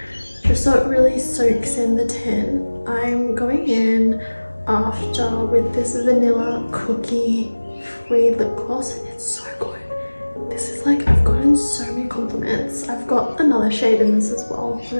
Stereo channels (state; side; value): inverted; both; correlation -1.00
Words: just so it really soaks in the tint. I'm going in after with this vanilla cookie free lip gloss. It's so good. This is like, I've gotten so many compliments. I've got another shade in this as well. I'll